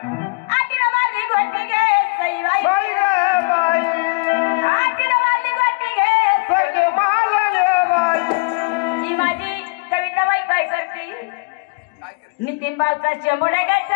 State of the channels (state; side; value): quieter; right; 30.6 dB